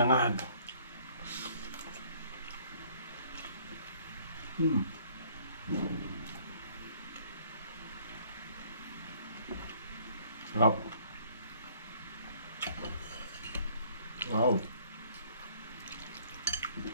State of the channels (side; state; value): both; inverted; correlation -0.59